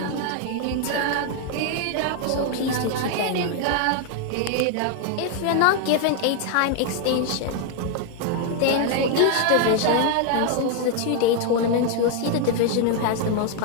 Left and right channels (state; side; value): different; both; correlation 0.00